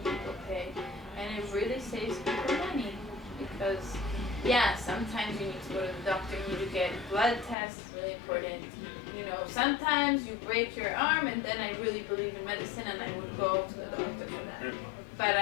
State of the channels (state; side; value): drops out; right; at 7.6 s